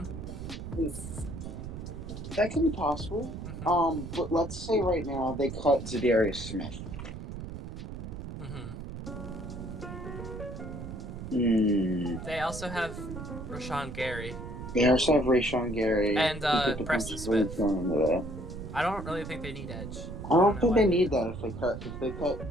That could be possible. Mm-hmm. But let's say right now they cut Zadarius Smith. They also have Rashawn Gary. They also have Rashawn Gary. And Preston Smith. I don't really think they need edge. I don't think they need that if they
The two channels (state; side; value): noise; right; rumble, 9 dB below the sound